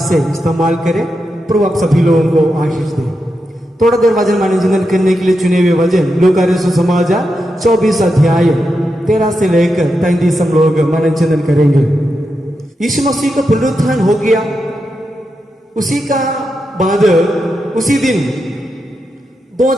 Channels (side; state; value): both; normal; correlation 0.87